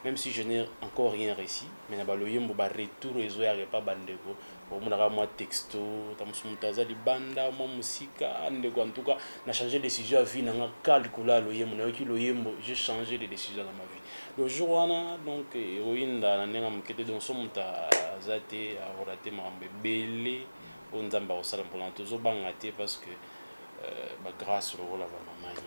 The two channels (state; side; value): inverted; both; correlation -1.00